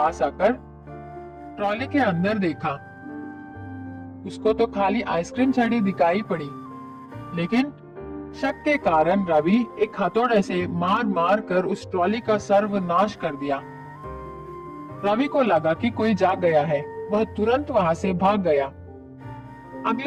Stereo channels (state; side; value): identical; both; correlation 1.00